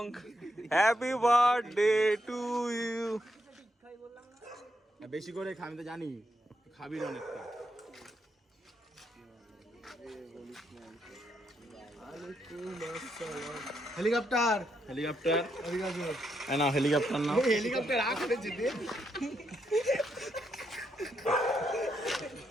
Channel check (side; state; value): both; normal; correlation 0.79